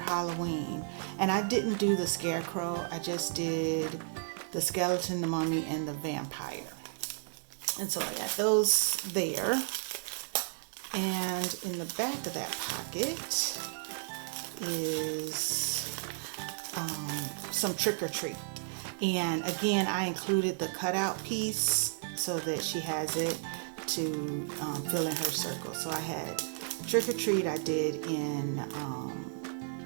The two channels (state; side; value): silent; left; digital silence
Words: Halloween, and I didn't do the scarecrow, I just did the skeleton, the mummy, and the vampire. And so I got those there. And in the back of that pocket is some trick or treat. And again, I included the cutout piece so that she has it to fill in her circle. So I had trick or treat I did in